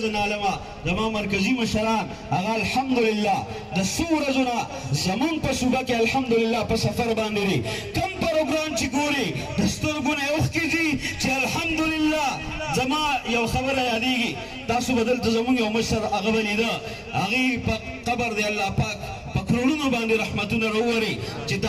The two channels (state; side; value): identical; both; correlation 1.00